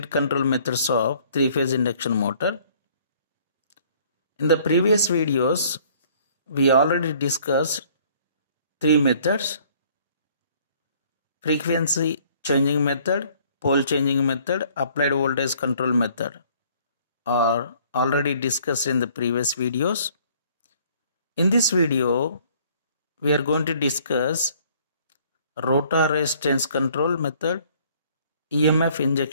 control methods of three-phase induction motor. In the previous videos, we already discussed three methods: frequency changing method, pole changing method, applied voltage control method are already discussed in the previous videos. In this video, we are going to discuss rotor resistance control method, EMF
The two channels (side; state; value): both; inverted; correlation -0.58